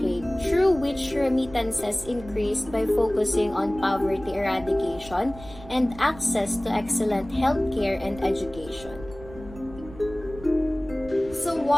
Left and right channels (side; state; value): right; noise; rumble, 17 dB below the sound